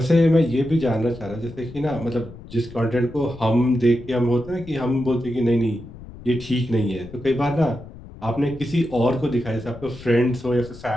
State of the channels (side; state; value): left; noise; rumble, 16 dB below the sound